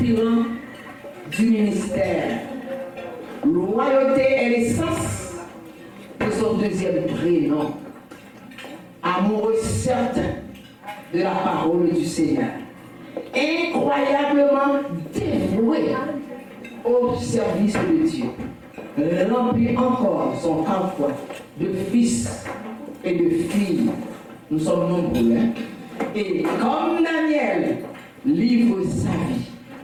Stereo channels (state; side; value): identical; both; correlation 1.00